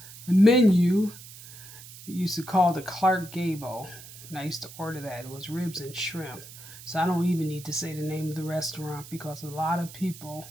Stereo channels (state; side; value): noise; right; hiss, 16 dB below the sound